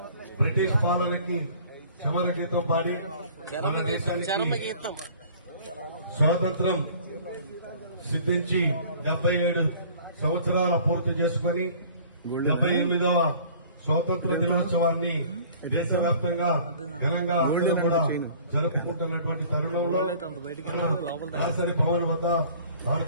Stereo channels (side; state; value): both; inverted; correlation -0.50